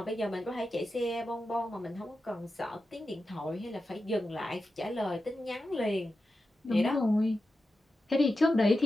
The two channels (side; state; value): both; normal; correlation 0.91